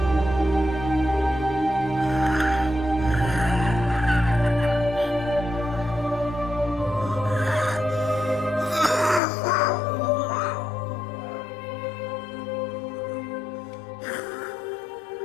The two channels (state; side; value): drops out; right; at 9.2 s